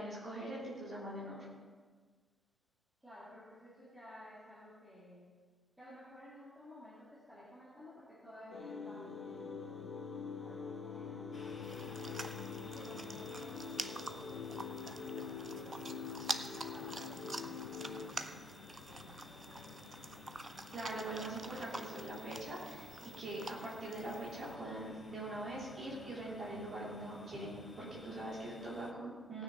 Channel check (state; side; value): normal; both; correlation 0.61